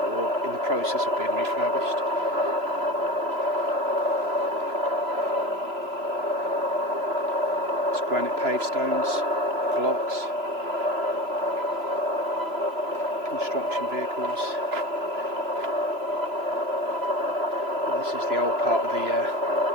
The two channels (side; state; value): left; late; 3.0 ms